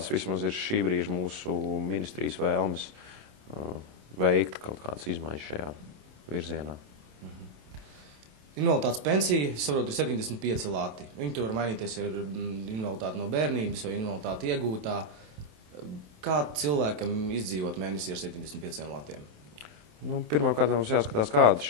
vismaz ir šī brīža mūsu ministrijas vēlmes veikt kaut kādas izmaiņas šajā virzienā. Invaliditātes pensija, es saprotu, ir 75 lati. Viņi tur var mainīties ar invaliditāti no bērnības vai invaliditāti iegūtā. Kā cilvēkam izdzīvot mēnesī ar 75 latiem? Pirmkārt, mums jāskatās, kāda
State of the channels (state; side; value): late; left; 27 ms